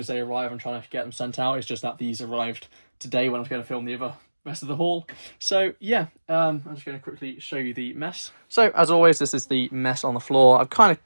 they arrive I'm trying to get them sent out. It's just that these arrived today when I was going to film the rest of the haul. So yeah, I'm just going to quickly show you the mess. So as always, this is the mess on the floor. I've kind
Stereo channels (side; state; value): both; inverted; correlation -1.00